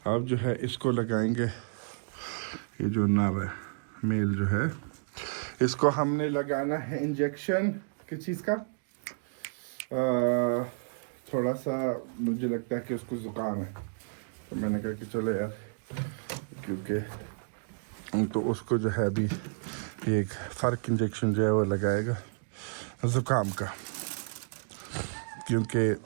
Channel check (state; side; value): silent; left; digital silence